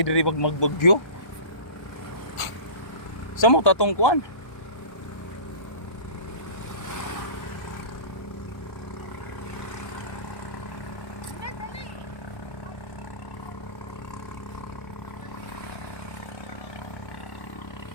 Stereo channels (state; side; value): late; right; 1.3 ms